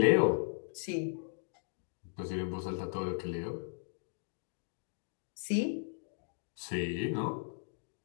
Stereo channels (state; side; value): silent; right; digital silence